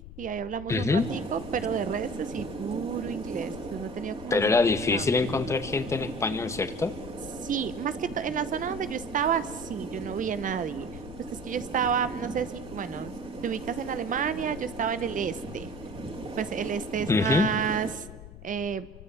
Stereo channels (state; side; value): noise; left; rumble, 15 dB below the sound